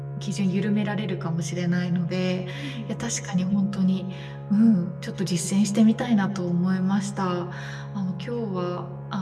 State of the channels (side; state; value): both; identical; correlation 1.00